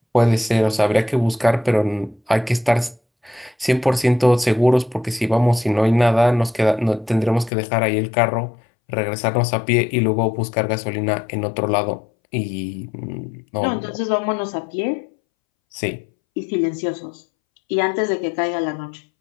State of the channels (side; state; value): right; drops out; at 7.5 s